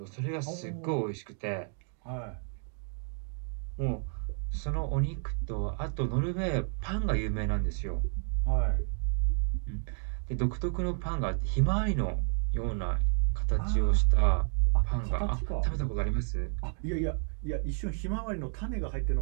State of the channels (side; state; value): left; silent; 57 dB below the other